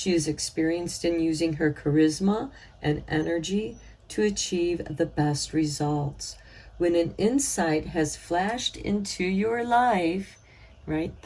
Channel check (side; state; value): both; identical; correlation 1.00